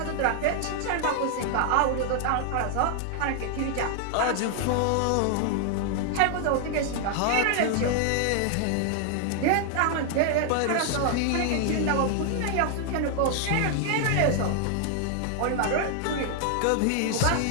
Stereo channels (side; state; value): both; different; correlation 0.00